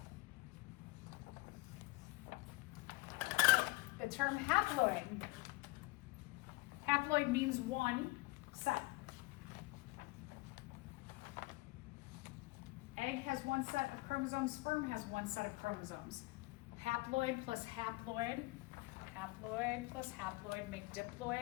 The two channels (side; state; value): right; quieter; 22.6 dB